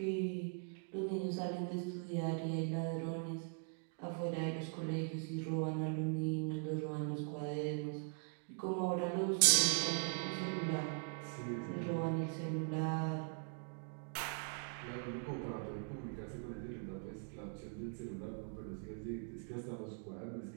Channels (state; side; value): silent; left; 50 dB below the other